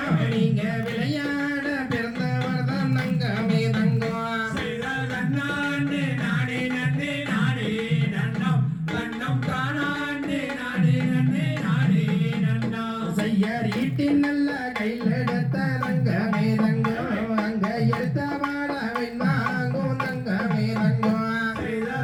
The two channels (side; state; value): both; identical; correlation 1.00